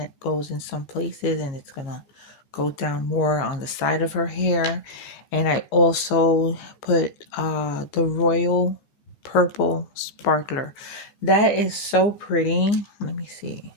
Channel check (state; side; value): late; right; 15 ms